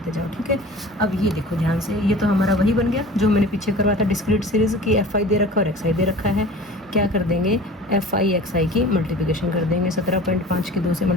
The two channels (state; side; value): normal; both; correlation 0.41